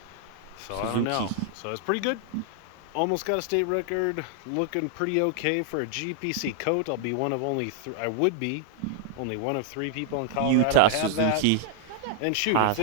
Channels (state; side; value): different; both; correlation -0.01